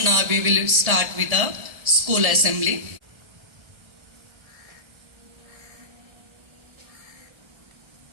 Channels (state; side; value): late; left; 1.7 ms